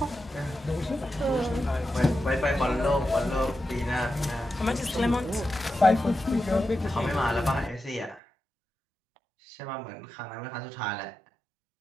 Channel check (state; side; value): drops out; left; at 8.2 s